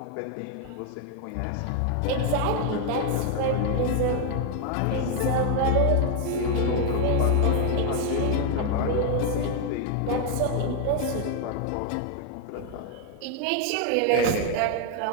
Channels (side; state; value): both; different; correlation 0.00